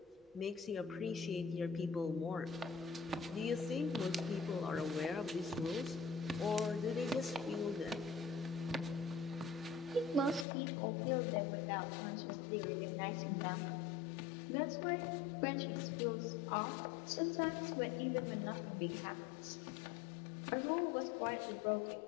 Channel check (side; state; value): right; drops out; at 10.5 s